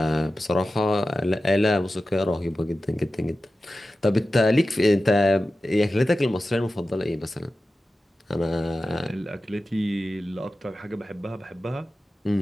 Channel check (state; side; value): normal; both; correlation 0.94